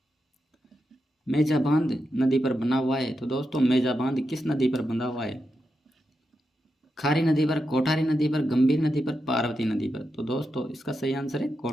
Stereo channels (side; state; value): both; normal; correlation 0.87